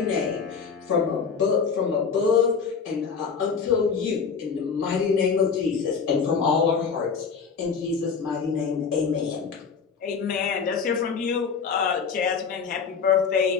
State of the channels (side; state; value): right; quieter; 5.8 dB